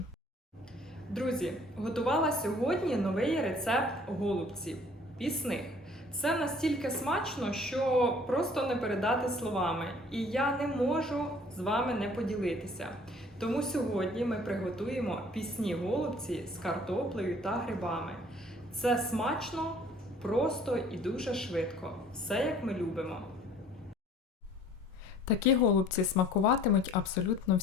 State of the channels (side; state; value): both; normal; correlation 0.54